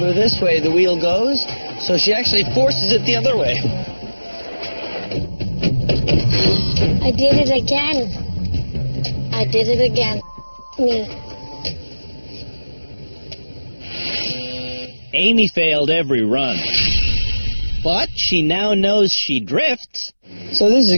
this way, the wheel goes, so she actually forces it the other way. I did it again. I did it again. Me. Amy failed every run, but she now knows she drifts. So this is a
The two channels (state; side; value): inverted; both; correlation -1.00